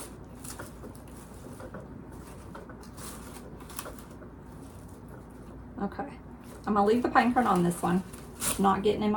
Okay, I'm gonna leave the pine cone on this one. It's not getting in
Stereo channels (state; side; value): identical; both; correlation 1.00